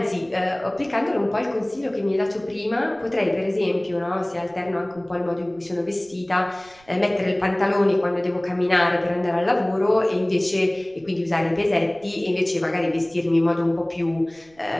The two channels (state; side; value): noise; right; rumble, 29 dB below the sound